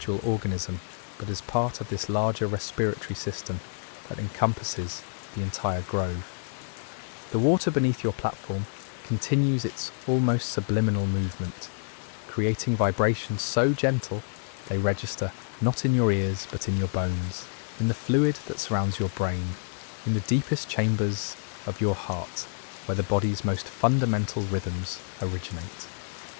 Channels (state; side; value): silent; right; digital silence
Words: organism, but as part of this larger respiratory system that encompasses the entire grove. The water beneath your platform continues its almost subliminal movement, creating vibrations so gentle they register not in your ears but in your bones, in the fluid that surrounds your brain, in the deepest chambers of your heart, where the body's most fundamental rhythms originate.